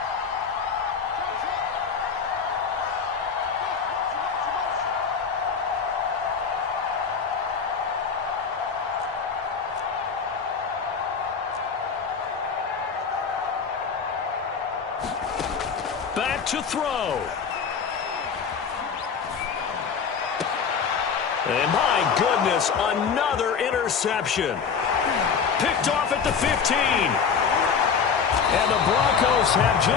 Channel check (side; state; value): right; quieter; 6.2 dB